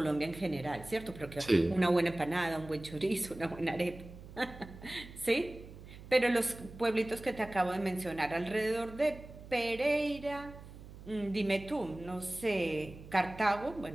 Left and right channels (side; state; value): right; noise; hum, 16 dB below the sound